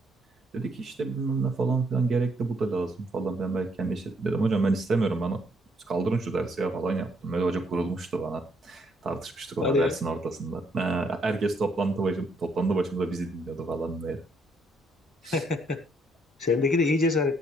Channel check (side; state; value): both; normal; correlation 0.71